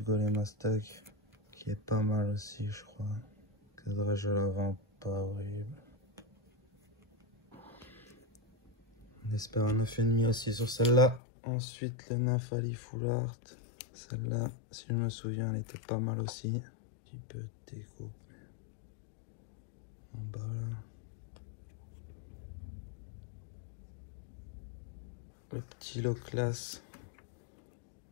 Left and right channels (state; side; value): drops out; right; at 11.2 s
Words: Golem Stack qui est pas mal aussi je crois. Cadrage à l'avant pas horrible. On espère un 9,5 aussi sur celle-là. Ensuite le Nymphali Full Art. Celle-là, si je me souviens, elle était pas mal aussi. Un petit peu de découpe. En bas là. Le petit lot classe